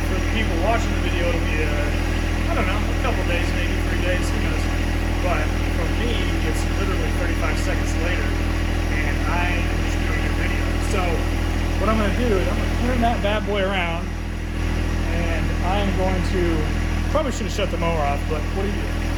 for the people watching the video, it'll be I don't know, a couple days, maybe 3 days, who knows. But for me, it's literally 35 seconds later, and I am just doing a video. So what I'm going to do is I'm going to turn that bad boy around, and I am going to, probably should have shut the mower off, but what do you do?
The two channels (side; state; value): both; identical; correlation 1.00